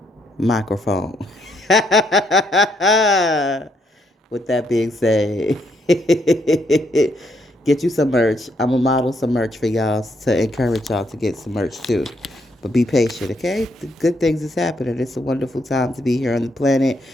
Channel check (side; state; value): both; normal; correlation 0.74